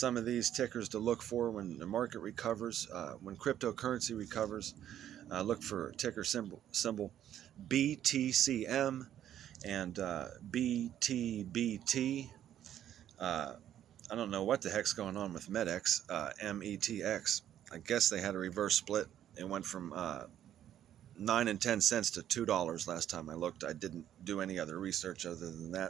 of these tickers to look for when the market recovers, when cryptocurrency recovers. Look for ticker symbol BTCM and BTBT. I don't know what the heck's going on with METX, METX. I guess they had a reverse split. It went from 9 and 10 cents to $2 last time I looked. I didn't do any other research other than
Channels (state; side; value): quieter; left; 11.0 dB